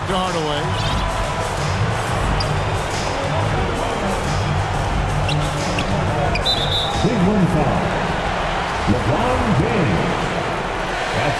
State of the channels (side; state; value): both; identical; correlation 1.00